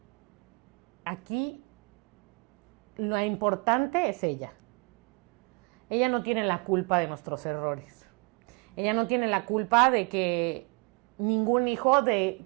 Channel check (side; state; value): left; quieter; 30.7 dB